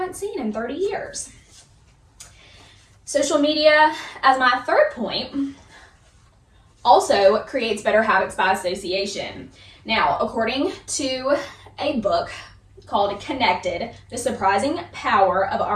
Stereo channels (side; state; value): both; identical; correlation 1.00